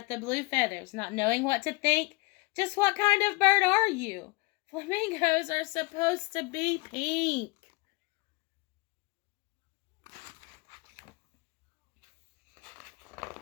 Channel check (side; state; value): right; quieter; 25.4 dB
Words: the blue feathers, not knowing what to think. Just what kind of bird are you? Flamingos are supposed to be pink.